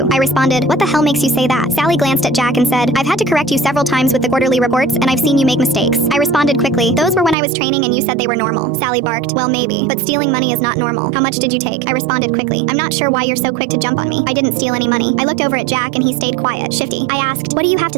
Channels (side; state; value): left; drops out; at 7.4 s